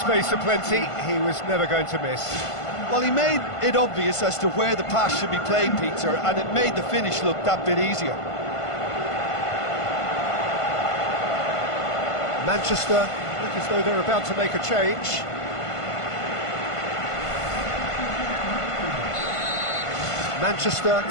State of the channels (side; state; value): right; late; 1.5 ms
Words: aplenty, he was never going to miss. Well, he made it obvious as to where the pass should be played, Peter, and it made the finish look that bit easier. Manchester look as though they're about to make a change. Manchester